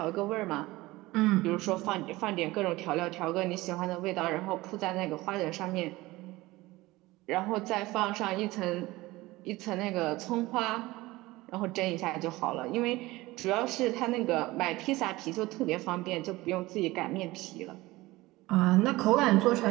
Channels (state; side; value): quieter; left; 19.6 dB